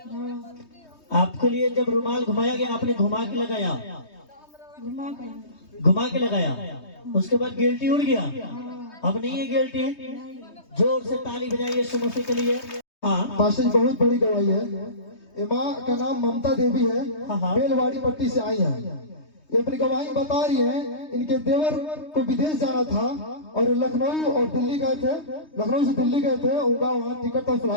आपके लिए जब रुमाल घुमाया गया, आपने घुमा के लगाया, घुमा के लगाया, उसके बाद गिल्टी उड़ गया। अब नहीं है गिल्टी। जोर से ताली बजाइए यीशु मसीह के लिए। पास्टर जी बहुत बड़ी गवाही है। माँ का नाम ममता देवी है, बेलवाड़ी पट्टी से आई है। ये अपनी गवाही बता रही है, इनके देवर को विदेश जाना था और लखनऊ और दिल्ली गए थे, लखनऊ से दिल्ली गए थे, उनका वहाँ टिकट का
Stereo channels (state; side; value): late; right; 3.2 ms